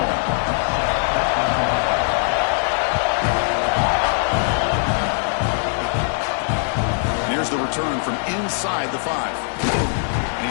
Here's the return from inside the 5. And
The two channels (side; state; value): right; silent; 65 dB below the other